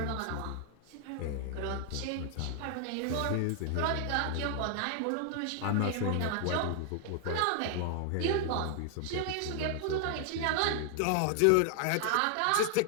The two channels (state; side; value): different; both; correlation 0.00